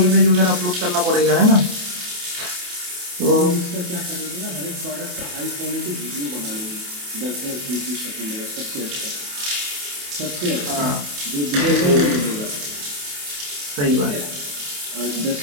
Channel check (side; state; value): left; late; 28 ms